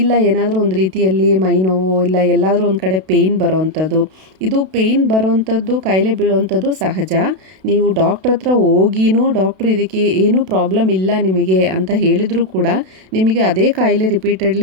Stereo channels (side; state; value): left; late; 32 ms